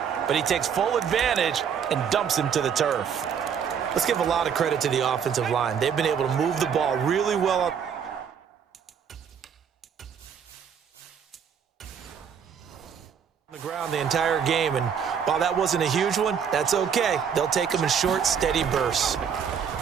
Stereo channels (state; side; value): quieter; left; 7.5 dB